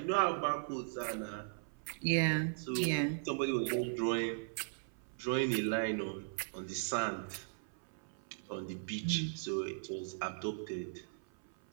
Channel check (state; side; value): silent; left; 52 dB below the other